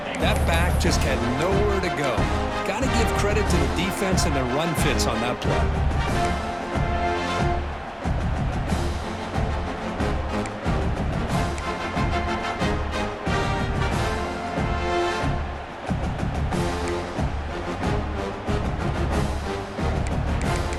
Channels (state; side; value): identical; both; correlation 1.00